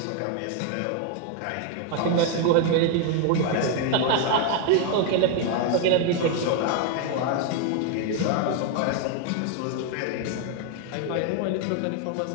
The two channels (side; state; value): both; different; correlation 0.00